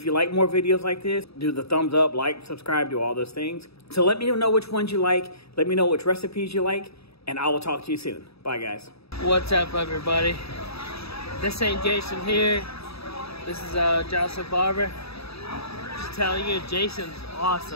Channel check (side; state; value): right; late; 0.77 ms